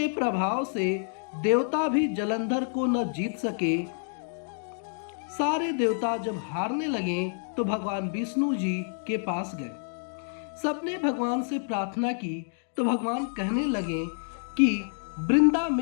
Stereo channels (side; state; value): right; silent; digital silence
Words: प्रभाव से देवता भी जलंधर को न जीत सके। सारे देवता जब हारने लगे तो भगवान विष्णु जी के पास गए। सबने भगवान से प्रार्थना की तो भगवान कहने लगे कि वृंदा